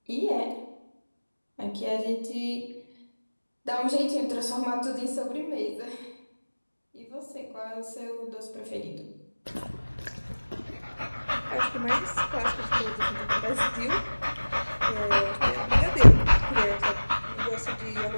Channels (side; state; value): both; inverted; correlation -1.00